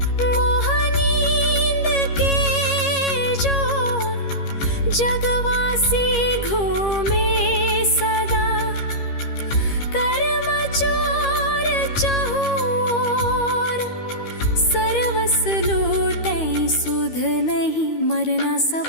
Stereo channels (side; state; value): right; late; 13 ms